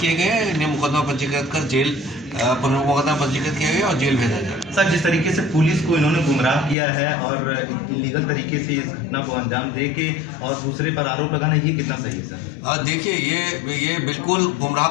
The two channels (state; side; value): drops out; right; at 6.8 s